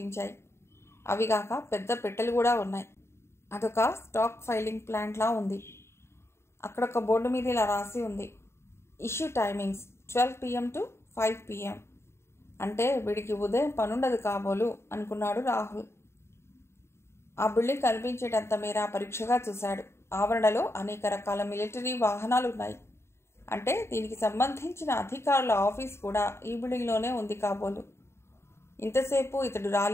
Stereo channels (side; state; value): right; late; 0.13 ms